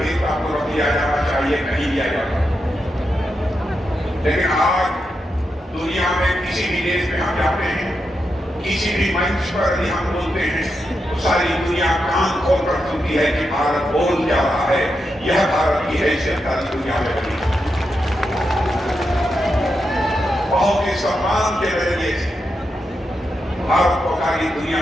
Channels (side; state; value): both; normal; correlation 0.86